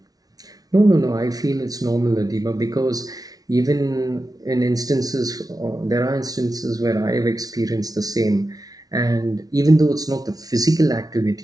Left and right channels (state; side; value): late; left; 0.18 ms